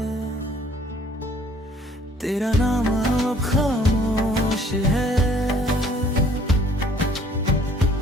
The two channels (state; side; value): normal; both; correlation 0.58